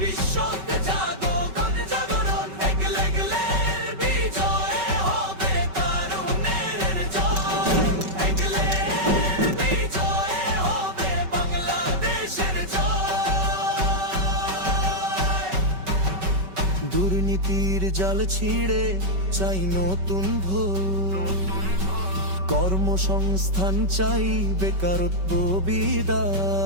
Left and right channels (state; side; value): late; left; 5.3 ms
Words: জাগো গণ জাগরণ, এগলে এগলের বিজয় হবে তরুণের জয়, এগলের বিজয় হবে বাংলাদেশের জয়। দুর্নীতির জাল ছিঁড়ে চাই নতুন ভোর, কর্মসংস্থান চাই বেকারত্ব